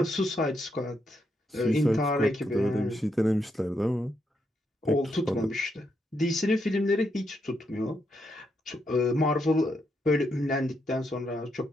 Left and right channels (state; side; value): normal; both; correlation 0.79